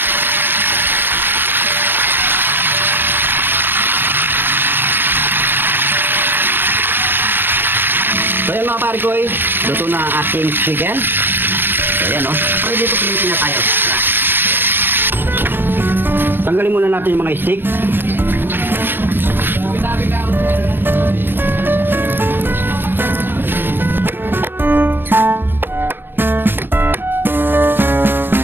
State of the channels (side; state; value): left; late; 0.097 ms